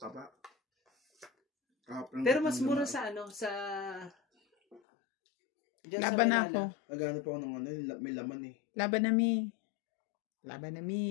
pero mas mura sa sa... Diyan sa Laban na Manila. ako. Nagano pa ako ng may laman eh. Laban na mi. Laban na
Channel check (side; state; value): right; drops out; at 4.8 s